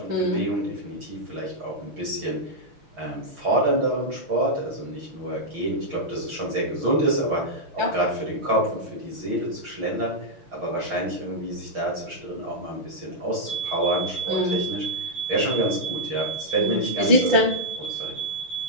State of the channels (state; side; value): late; left; 6.4 ms